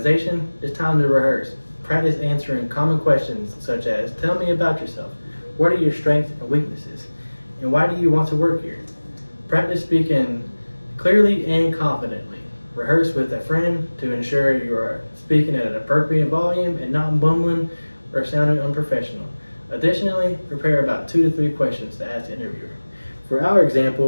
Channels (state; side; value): inverted; both; correlation -1.00